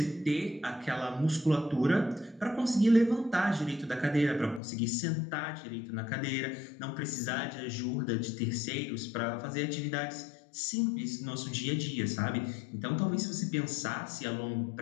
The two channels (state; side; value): drops out; right; at 4.6 s